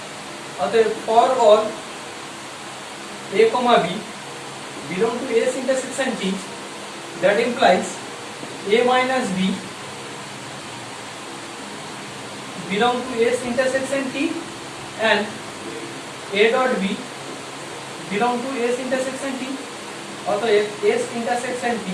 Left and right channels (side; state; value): both; identical; correlation 1.00